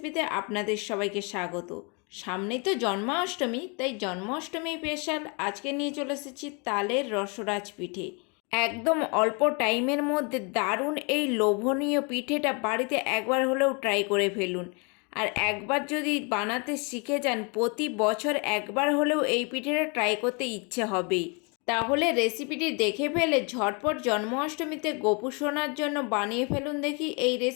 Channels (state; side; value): quieter; right; 33.0 dB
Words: আপনাদের সবাইকে স্বাগত। সামনেই তো জন্মাষ্টমী, তাই জন্মাষ্টমী স্পেশাল আজকে নিয়ে চলে এসেছি তালের রসরাজ পিঠে। একদম অল্প টাইমের মধ্যে দারুণ এই লোভনীয় পিঠেটা বাড়িতে একবার হলেও ট্রাই করে ফেলুন। আর একবার যদি বানাতে শিখে যান, প্রতি বছর একবার হলেও এই পিঠেটা ট্রাই করতে ইচ্ছে হবেই। তাহলে রেসিপিটি দেখে ফেলে ঝটপট জন্মাষ্টমীতে গোপু সোনার জন্য বানিয়ে ফেলুন দেখি এই